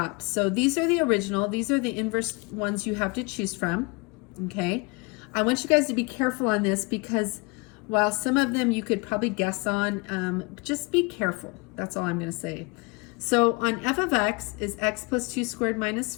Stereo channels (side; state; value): right; quieter; 28.6 dB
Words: So these are the original. These are the inverse ones you have to choose from, okay? I want you guys to be careful on this because while some of them you could probably guess on, just be careful. That's all I'm gonna say. So on f of x is x plus 2 squared minus